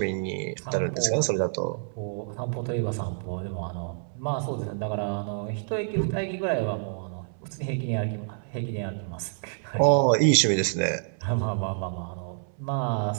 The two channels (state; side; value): silent; left; 59 dB below the other